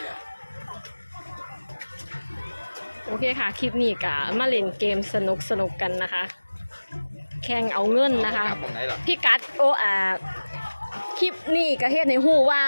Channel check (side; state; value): both; inverted; correlation -1.00